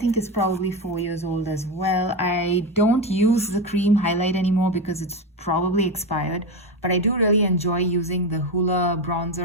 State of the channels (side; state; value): both; normal; correlation 0.16